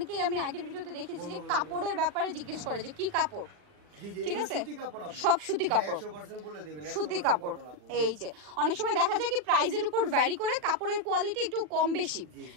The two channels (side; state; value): left; late; 40 ms